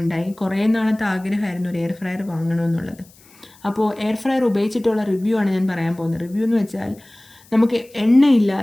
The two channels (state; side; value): noise; left; hiss, 27 dB below the sound